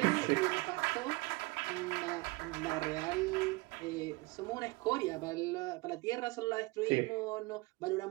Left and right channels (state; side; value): quieter; left; 24.5 dB